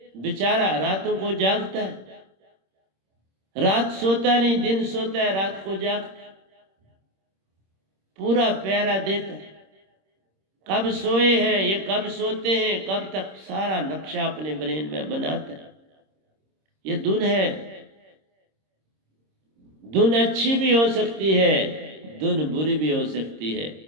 बेचारा रातों को जागता है, रात सोता नहीं, दिन सोता है, रात को जागता है, पूरा पहरा देता है। कब सोए हैं, ये कब सोते हैं, कब तक, सारा नक्शा अपने ब्रेन में बनाता है। ये धुन है। धुन अच्छी भी हो सकती है, धुन बुरी भी हो सकती है,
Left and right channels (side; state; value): left; late; 26 ms